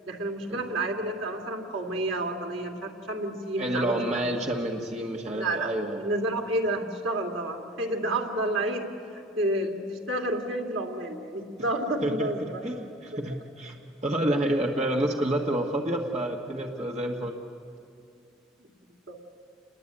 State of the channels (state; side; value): normal; both; correlation 0.42